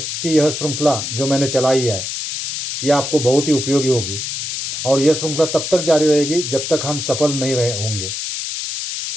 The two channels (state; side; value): noise; left; hiss, 4 dB below the sound